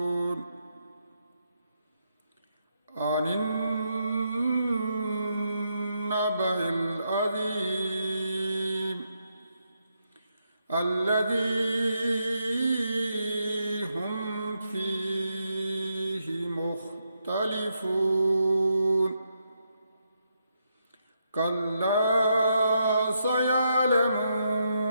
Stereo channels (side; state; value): both; inverted; correlation -0.81